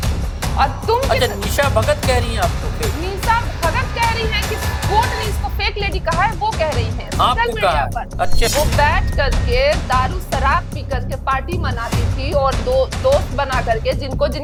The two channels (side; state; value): both; identical; correlation 1.00